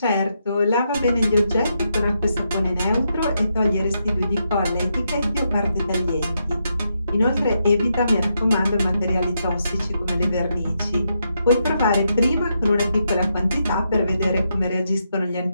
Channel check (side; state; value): both; inverted; correlation -0.81